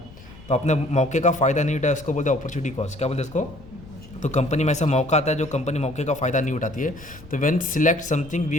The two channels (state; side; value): noise; left; rumble, 19 dB below the sound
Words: तो आपने मौके का फ़ायदा नहीं उठाया, उसको बोलते हैं अपॉर्चुनिटी कॉस्ट। क्या बोलते हैं इसको। तो कंपनी में ऐसा मौका आता है जो कंपनी मौके का फ़ायदा नहीं उठाती है। तो when select something